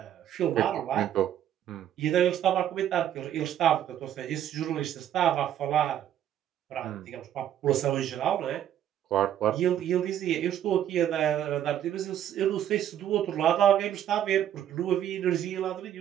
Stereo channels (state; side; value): quieter; left; 10.8 dB